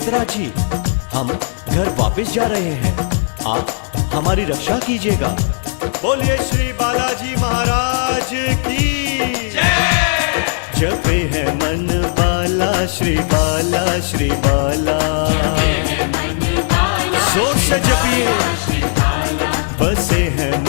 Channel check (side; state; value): right; silent; 58 dB below the other